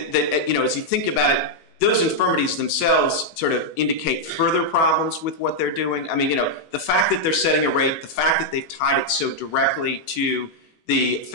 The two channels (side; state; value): right; late; 18 ms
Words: as you think about it, those infirmities themselves sort of indicate further problems with what they're doing. I mean, the fact that they're setting a rate, the fact that they've tied it so directly to the